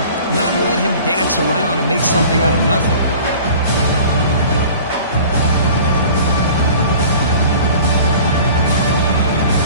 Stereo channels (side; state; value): both; inverted; correlation -0.44